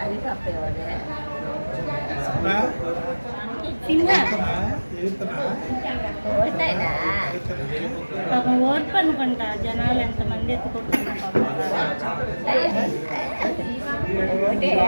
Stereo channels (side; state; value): both; inverted; correlation -1.00